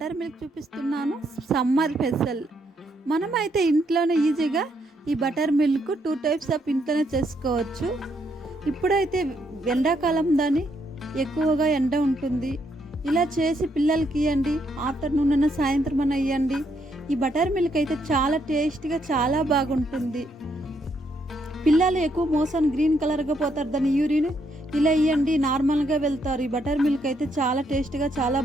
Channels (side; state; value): both; normal; correlation 0.75